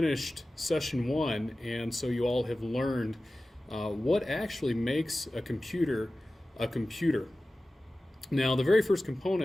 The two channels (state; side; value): normal; both; correlation 0.96